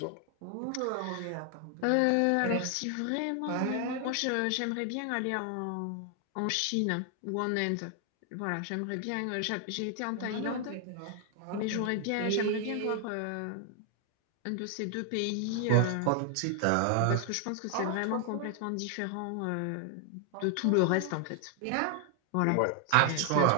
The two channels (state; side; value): different; both; correlation 0.00